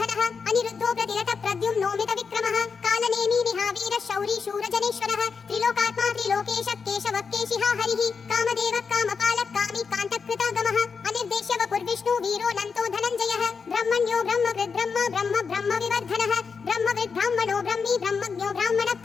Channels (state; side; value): quieter; right; 5.5 dB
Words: अनिरुद्धो प्रतिरतः प्रद्युम्नो मितविक्रमः कालनेमी निहावीरः शौरी शूरजनेश्वरः त्रिलोकात्मा त्रिलोकेशः केशवः केशिहा हरिः कामदेवः कामपालः कामी कान्तकृतागमः अनिर्देश्य वपुर्विष्णु वीरो नन्तो धनञ्जयः ब्रह्मण्यो ब्रह्मकृद् ब्रह्म ब्रह्म ब्रह्म विवर्धनः ब्रह्मविद् ब्राह्मणो ब्रह्मी ब्रह्मज्ञो